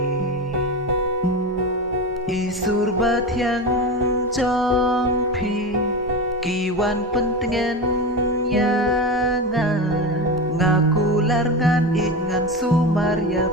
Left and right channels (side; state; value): both; normal; correlation 0.22